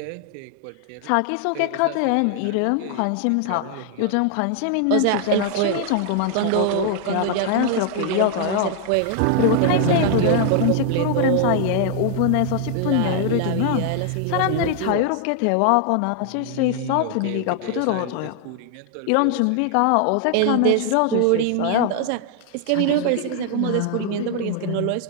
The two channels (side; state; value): both; different; correlation 0.00